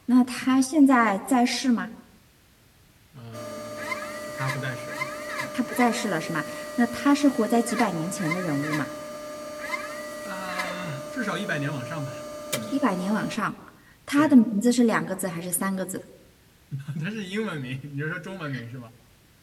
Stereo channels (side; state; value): both; identical; correlation 1.00